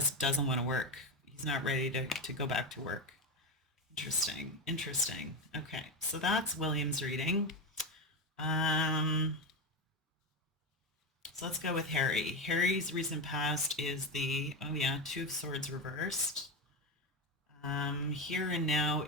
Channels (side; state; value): both; normal; correlation 0.15